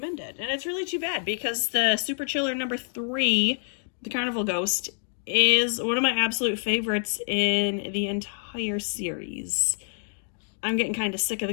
it. And it's really too bad because the Super Chiller number 3, The Carnival Ghost, is one of my absolute favorites in the entire series. I'm getting kind of sick of the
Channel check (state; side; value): silent; right; digital silence